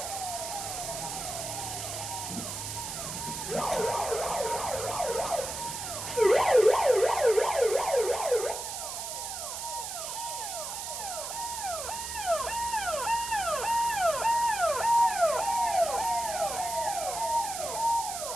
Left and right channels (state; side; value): noise; right; hiss, 6 dB below the sound